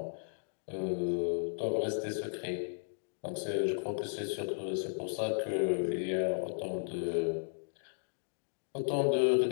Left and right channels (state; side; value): silent; right; digital silence